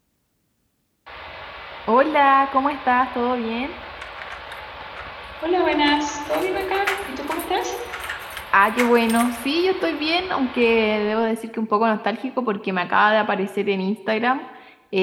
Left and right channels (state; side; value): identical; both; correlation 1.00